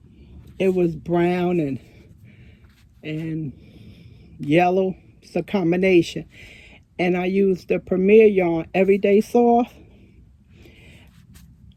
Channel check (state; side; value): identical; both; correlation 1.00